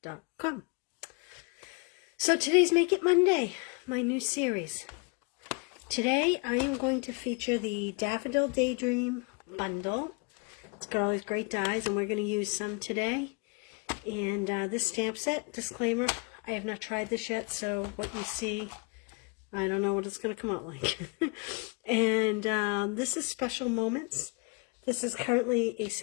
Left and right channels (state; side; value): quieter; right; 32.0 dB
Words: So today's Make It Monday, my new series. Today I am going to feature the Daffodil Daydream bundle. It's got all these great dies and we're going to use some today. And this stamp set, disclaimer, I have not tried this yet, so what you see, I don't know what it's going to come out like. And this is Special Moments. This is currently a